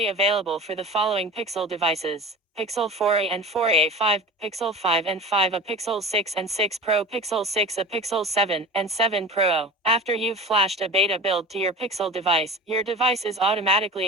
available for the following Pixel devices: Pixel 4a and 4a5, Pixel 5 and 5a, Pixel 6 and 6 Pro, Pixel 6a, Pixel 7 and 7 Pro. After you've flashed a beta build to your Pixel device, your device is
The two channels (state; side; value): normal; both; correlation 0.35